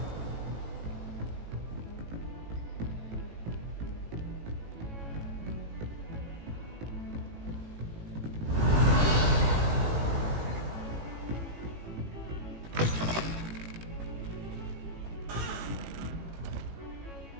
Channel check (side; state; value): left; late; 18 ms